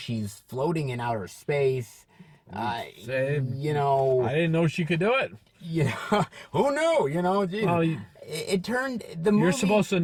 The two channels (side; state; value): both; identical; correlation 1.00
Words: floating in outer space. You know... I didn't know she could do it. Yeah, who knew? You know, it turned the movie. You're supposed to